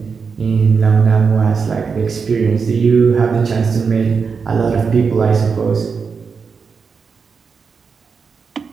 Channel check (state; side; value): quieter; left; 5.5 dB